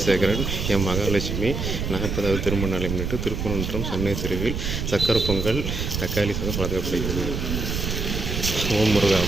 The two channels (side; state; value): right; noise; rumble, 3 dB below the sound